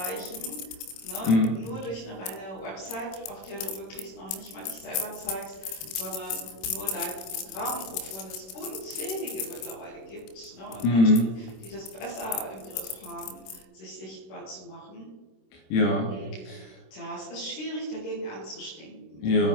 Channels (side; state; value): right; late; 26 ms